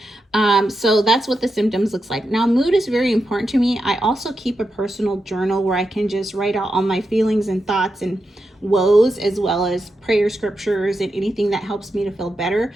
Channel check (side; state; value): both; normal; correlation 0.87